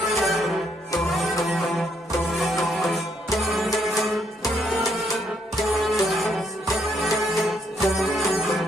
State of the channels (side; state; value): both; normal; correlation 0.72